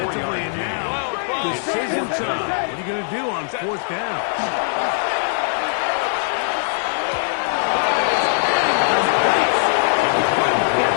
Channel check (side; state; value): right; silent; digital silence